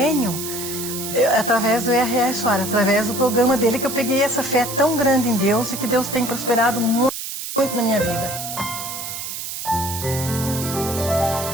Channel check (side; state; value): right; noise; hiss, 7 dB below the sound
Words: através do R.R. Soares, através do programa dele, que eu peguei essa fé tão grande em Deus e que Deus tem prosperado muito, muito na minha vida.